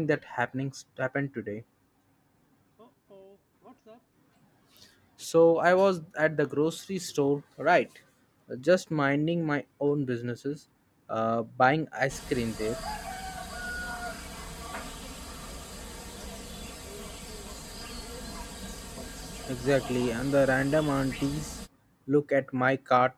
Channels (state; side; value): identical; both; correlation 1.00